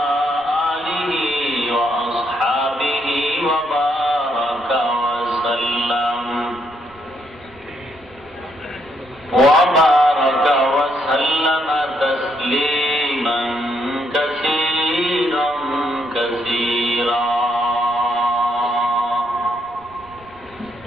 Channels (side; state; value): right; noise; rumble, 25 dB below the sound